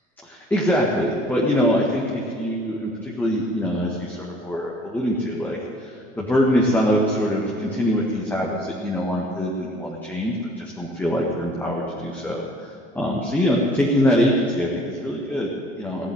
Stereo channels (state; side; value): normal; both; correlation 0.54